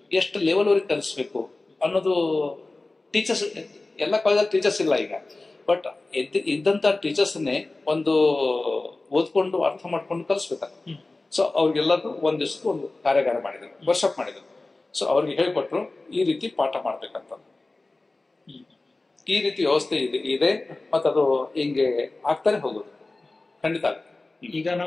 ಎಷ್ಟು ಲೆವೆಲ್ ವರೆಗೆ ಕಲಿಸ್ಬೇಕು ಅನ್ನೋದು ಟೀಚರ್ಸ್ ಎಲ್ಲ ಕಾಲೇಜಲ್ಲಿ ಟೀಚರ್ಸ್ ಇಲ್ಲ ಈಗ. ಬಟ್ ಇದ್ದಂತ ಟೀಚರ್ಸ್ನೇ ಒಂದು ಓದ್ಕೊಂಡು ಅರ್ಥ ಮಾಡ್ಕೊಂಡು ಕಲಿಸ್ಬೇಕಾಗ. ಸೊ ಅವ್ರಿಗೆಲ್ಲರೂ ಒಂದ್ ದಿವಸಕ್ಕೆ ಒಂದು ಕಾರ್ಯಾಗಾರ ಮಾಡಿದ್ರು, ವರ್ಕ್ಶಾಪ್ ಮಾಡಿದ್ರು. ಸೊ ಅವ್ರಿಗೆ ಹೇಳ್ಕೊಟ್ರು ಈ ರೀತಿ ಪಾಠ ಮಾಡ್ಬೇಕಂತ. ಈ ರೀತಿ ವ್ಯವಸ್ಥೆ ಇದೆ ಮತ್ತೆ ಅದು ಹಿಂಗೆ ಆಗ್ತಾನೆ ಹೋಗುದು ಖಂಡಿತ. ಈಗ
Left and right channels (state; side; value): quieter; right; 3.2 dB